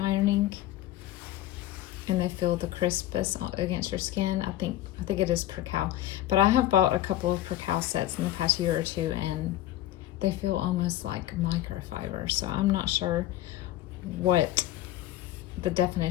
And they feel the crispness against your skin. I think it is percale. But I have bought a couple of percale sets in the past year or two, and they feel almost like microfiber. So I'm not sure what the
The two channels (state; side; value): quieter; right; 14.1 dB